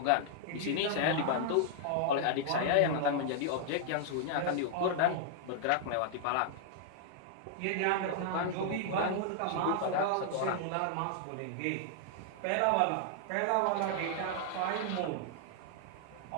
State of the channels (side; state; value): both; different; correlation -0.01